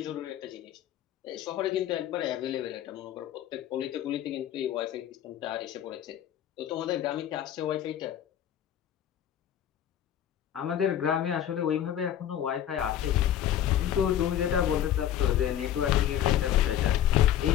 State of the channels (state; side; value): quieter; right; 10.9 dB